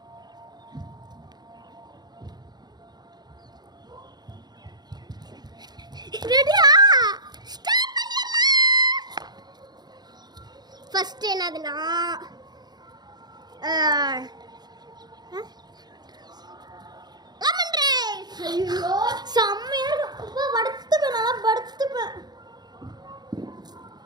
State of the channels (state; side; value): late; left; 0.20 ms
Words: ரெடியா ஸ்டார்ட் பண்ணிடலாம். ஃபர்ஸ்ட் என்னதுன்னா லெமன் ரைஸ். ஐயோ செம்மையா இருக்கு. படுத்துப்பேன், நல்லா படுத்துப்பேன்.